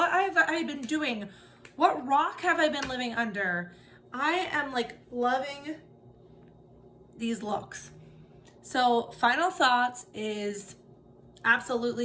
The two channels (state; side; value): identical; both; correlation 1.00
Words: have I been doing? What rock have I been living under? I am like loving these looks. So final thoughts is